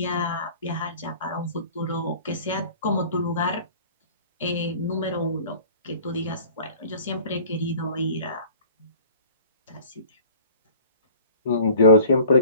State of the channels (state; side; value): inverted; both; correlation -0.46